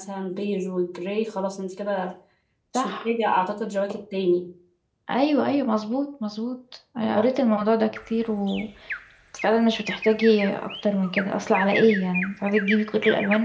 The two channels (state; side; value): identical; both; correlation 1.00